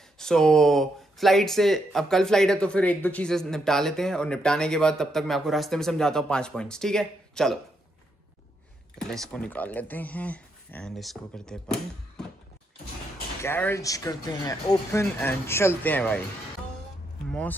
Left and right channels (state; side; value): normal; both; correlation 0.79